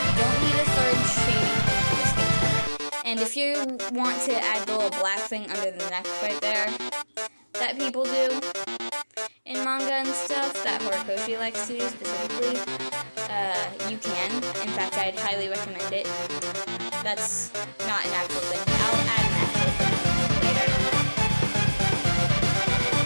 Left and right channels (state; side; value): inverted; both; correlation -1.00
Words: You don't need a third shade for the skin tone. And if you want to add the little black thing under the neck right there that people do in manga and stuff, that Horikoshi likes to do specifically, you can. In fact, I'd highly recommend it. That's not an actual thing. I'll add an actual thing later.